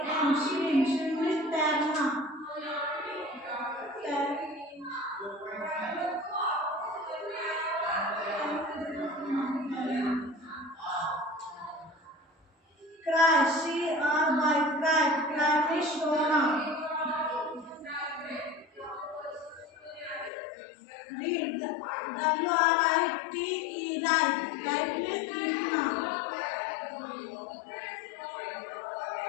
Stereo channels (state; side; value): drops out; right; at 20.3 s